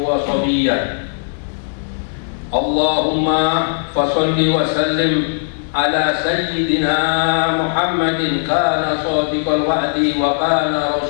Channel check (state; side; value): silent; right; digital silence